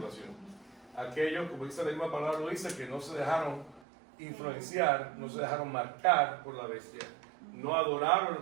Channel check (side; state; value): left; drops out; at 3.8 s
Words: Aquellos, como dice la misma palabra, lo dice, que no se dejaron influenciar, no se dejaron marcar por la bestia, no